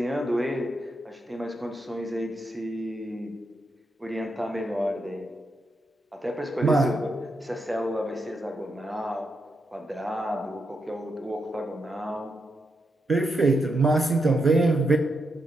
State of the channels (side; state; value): both; normal; correlation 0.83